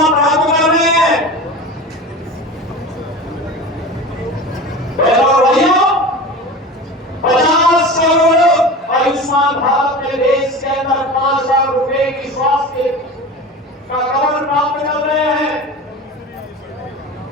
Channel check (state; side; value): normal; both; correlation 0.32